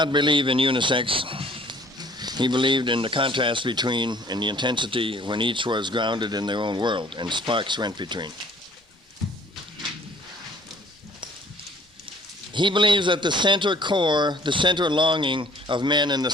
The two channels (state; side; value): normal; both; correlation 0.56